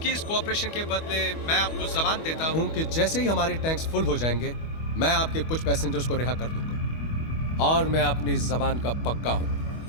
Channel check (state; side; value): late; right; 25 ms